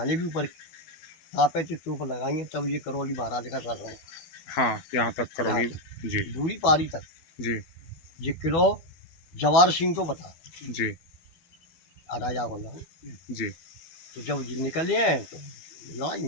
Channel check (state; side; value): late; right; 12 ms